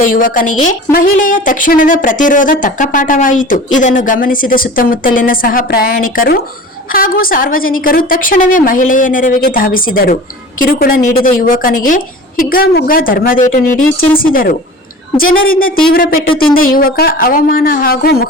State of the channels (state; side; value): normal; both; correlation 0.38